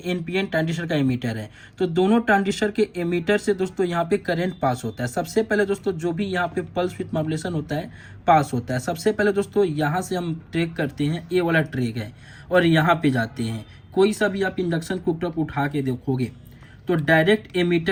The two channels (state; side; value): identical; both; correlation 1.00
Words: NPN ट्रांजिस्टर का एमीटर है, तो दोनों ट्रांजिस्टर के एमीटर से दोस्तों यहाँ पे करंट पास होता है। सबसे पहले दोस्तों जो भी यहाँ पे पल्स विथ मॉड्यूलेशन होता है पास होता है। सबसे पहले दोस्तों यहाँ से हम ट्रैक करते हैं, ये वाला ट्रैक है, और यहाँ पे जाते हैं। कोई सा भी आप इंडक्शन कुकटॉप उठा के देखोगे तो डायरेक्ट